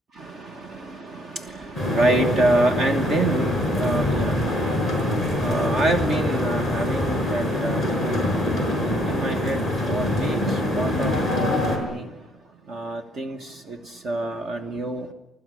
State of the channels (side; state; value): both; normal; correlation 0.66